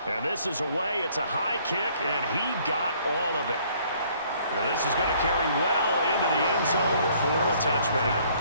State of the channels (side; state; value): both; inverted; correlation -0.61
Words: And this is away. It's a high kick, and he got all of it. And this is going to carry well into the end zone for a touchback.